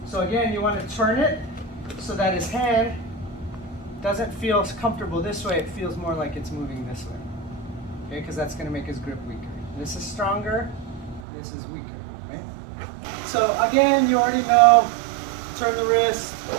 So again, you want to turn it so that his hand doesn't feel comfortable this way. It feels more like it's moving this way. Okay, because that's going to make his grip weaker. This is stronger, this is weaker, right? So again, you already know, turn the wrist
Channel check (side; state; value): left; drops out; at 11.2 s